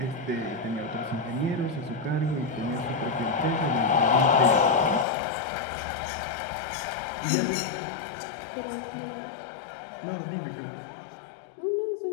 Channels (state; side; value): drops out; right; at 5.1 s